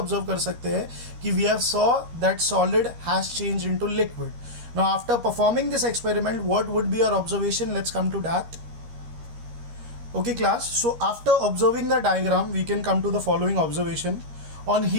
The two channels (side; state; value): left; late; 13 ms